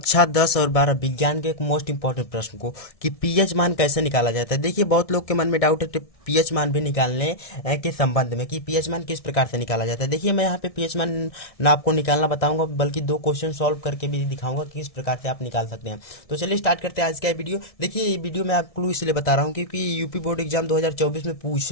10 और 12 विज्ञान के एक मोस्ट इंपॉर्टेंट प्रश्न को कि पीएच मान कैसे निकाला जाता है। देखिए, बहुत लोग के मन में डाउट है कि पीएच मान भी निकालने के संबंध में कि पीएच मान किस प्रकार से निकाला जाता है। देखिए, मैं यहाँ पे पीएच मान ना आपको निकालना बताऊंगा, बल्कि दो क्वेश्चन सॉल्व करके भी दिखाऊंगा कि किस प्रकार से आप निकाल सकते हैं। तो चलिए स्टार्ट करते हैं आज का वीडियो। देखिए, ये वीडियो मैं आपको क्लू इसलिए बता रहा हूँ क्योंकि यूपी बोर्ड एग्जाम 2024 में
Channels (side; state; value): right; late; 1.6 ms